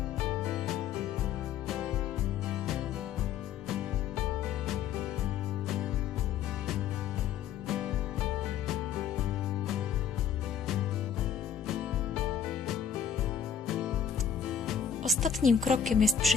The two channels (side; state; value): right; quieter; 8.0 dB